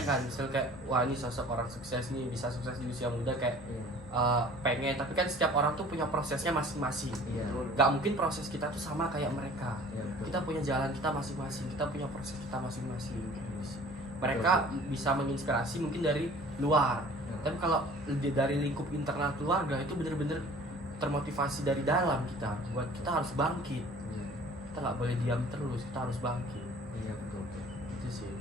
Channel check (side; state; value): both; normal; correlation 0.48